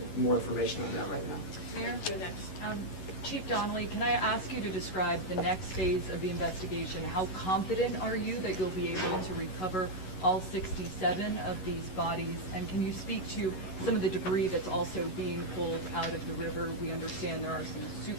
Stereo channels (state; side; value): late; right; 11 ms